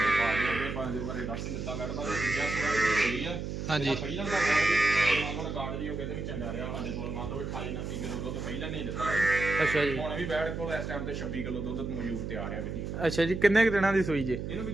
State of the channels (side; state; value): right; noise; hum, 5 dB below the sound